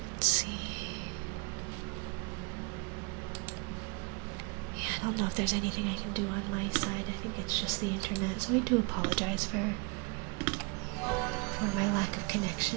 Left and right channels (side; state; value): left; quieter; 30.8 dB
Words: Let's see. Yeah, I don't know if there's anything I can do on my side. I think it's just the internet, so I do apologize for my lack of